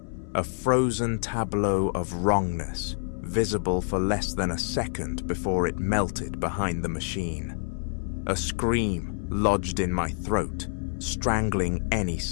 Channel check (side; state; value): right; silent; 60 dB below the other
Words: A frozen tableau of wrongness, visible for less than a second before it melted behind the machine. A scream lodged in my throat, strangling any